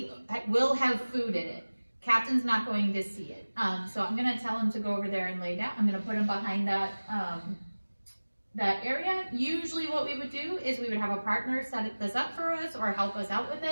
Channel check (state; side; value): inverted; both; correlation -1.00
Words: will have food in it. Captain's not going to see it. So I'm gonna tell him to go over there and lay down. I'm gonna put him behind that, that area. Usually what we would do is we would have a partner set this up for us or help us out with